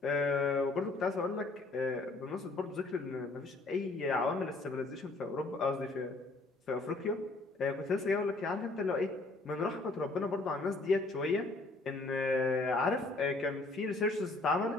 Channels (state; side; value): quieter; right; 3.2 dB